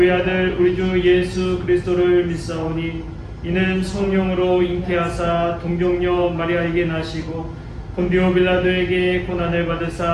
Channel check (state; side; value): identical; both; correlation 1.00